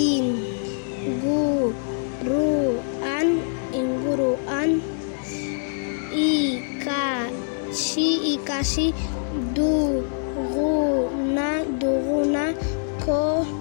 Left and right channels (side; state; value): right; silent; digital silence